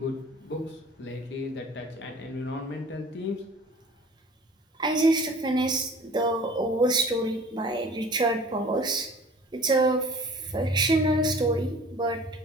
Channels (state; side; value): normal; both; correlation 0.46